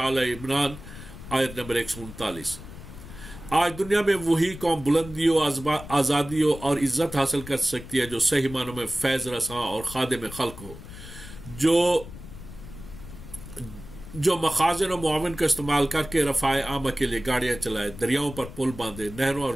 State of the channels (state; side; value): noise; left; rumble, 14 dB below the sound